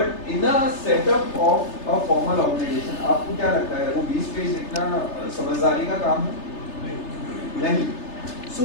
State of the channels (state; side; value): late; right; 3.3 ms